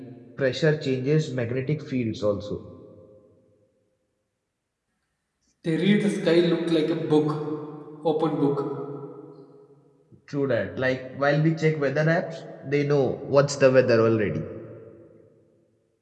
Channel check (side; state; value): both; identical; correlation 1.00